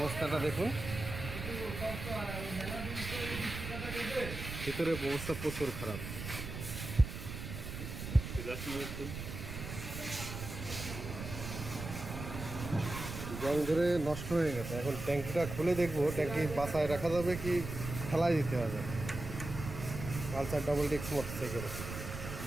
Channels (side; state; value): right; noise; rumble, 7 dB below the sound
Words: দেখুন, ভিতরে অবস্থা প্রচুর খারাপ। জং ধরে নষ্ট হয়ে গেছে। এখন ট্যাঙ্কিটা খুলে দেখবো ট্যাঙ্কি বাসায় রাখা যাবে কি ফেলাই দিতে হবে। পালসার ডবল ডিস্ক মোটরসাইকেল